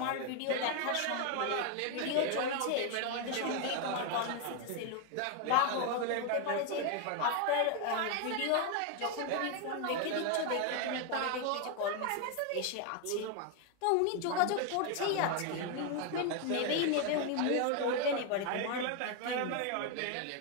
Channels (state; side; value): different; both; correlation 0.01